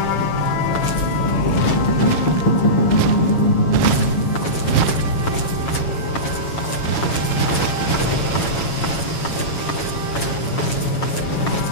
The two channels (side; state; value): right; late; 7.7 ms